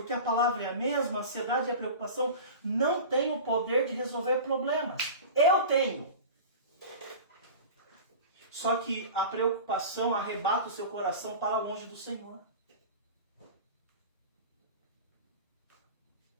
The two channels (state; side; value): inverted; both; correlation -0.33